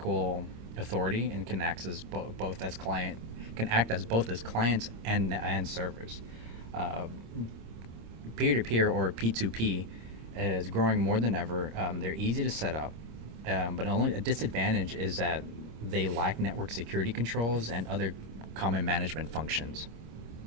authority and can act as both as clients and servers. Peer-to-peer or P2P is growing more than ever. They're easy to set up, but only a disadvantage is that they lack network security controls and other common management functions.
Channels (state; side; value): late; left; 26 ms